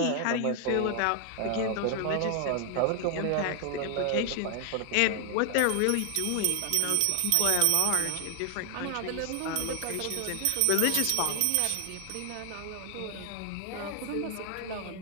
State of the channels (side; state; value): both; different; correlation 0.00